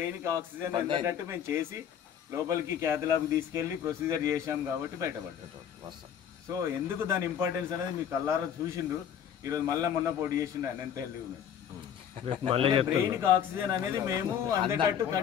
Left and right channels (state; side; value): quieter; right; 8.8 dB